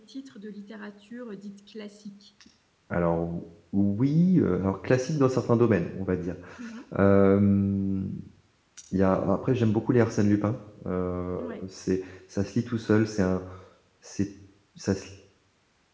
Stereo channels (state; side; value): identical; both; correlation 1.00